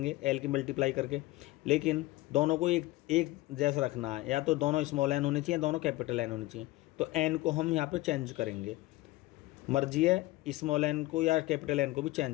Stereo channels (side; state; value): right; quieter; 19.0 dB